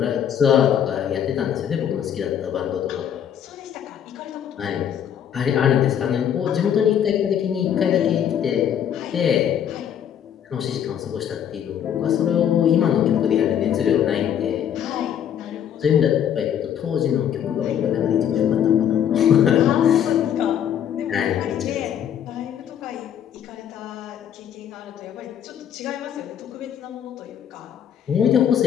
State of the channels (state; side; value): quieter; right; 9.3 dB